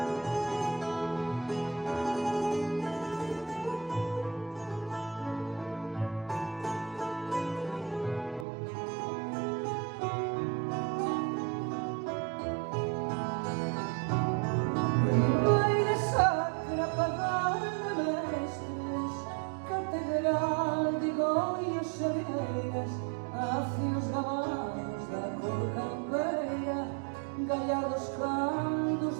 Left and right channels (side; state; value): left; drops out; at 8.5 s